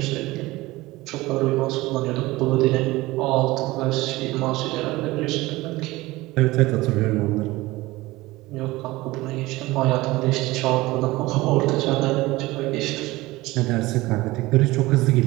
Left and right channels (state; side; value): quieter; left; 19.7 dB